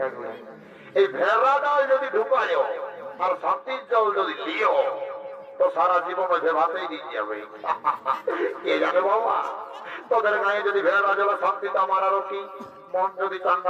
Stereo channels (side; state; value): both; identical; correlation 1.00